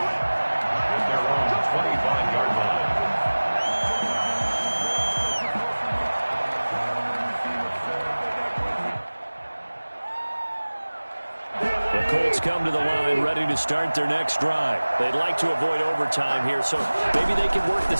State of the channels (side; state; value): both; inverted; correlation -1.00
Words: At their own 25-yard line. Colts come to the line ready to start their next drive. They'd like to avoid overtime here, so maybe they can work the